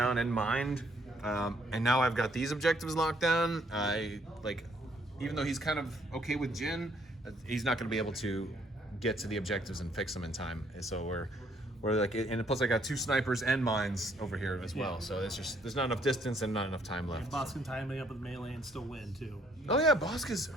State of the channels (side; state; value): both; normal; correlation 0.67